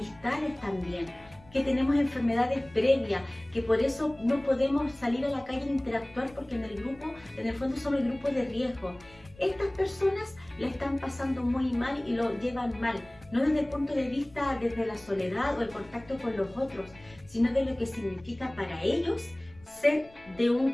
también, que tenemos enfermedades previas, que por eso no podemos salir a la calle e interactuar porque en el fondo somos el grupo de riesgo. Estas personas la están pasando muy mal y lo llevan mal, no desde el punto de vista desde la soledad o el contacto con los otros, sino de lo que significa para ellos ser de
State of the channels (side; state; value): left; noise; rumble, 25 dB below the sound